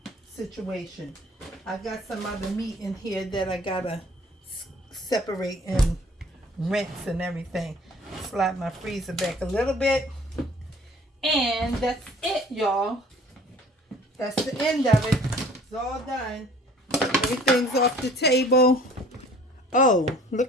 situation. I got some other meat in here that I gotta separate and rinse and everything. Slide my freezer back a little bit. And that's it, y'all. That's the end of it. It's all done. Everything's off the table. Oh,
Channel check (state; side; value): normal; both; correlation 0.52